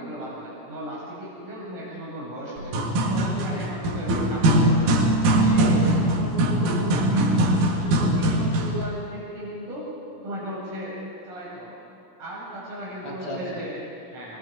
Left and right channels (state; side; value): late; left; 17 ms